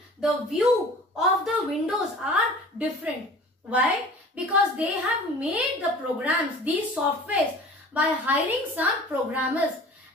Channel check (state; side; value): normal; both; correlation 0.43